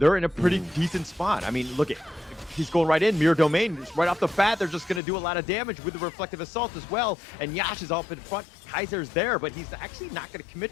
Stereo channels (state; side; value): drops out; right; at 5.0 s